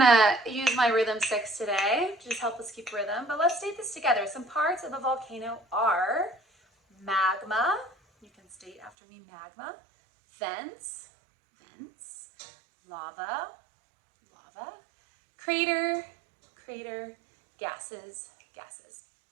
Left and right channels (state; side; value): drops out; left; at 8.9 s